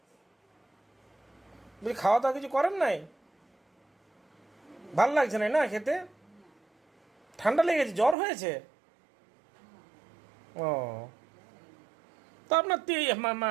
বলি খাওয়া দাওয়া কিছু করেন নাই? ভাল লাগছে না না খেতে? ঠান্ডা লেগেছে, জ্বর হয়েছে? ও তো আপনার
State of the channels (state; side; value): drops out; left; at 8.2 s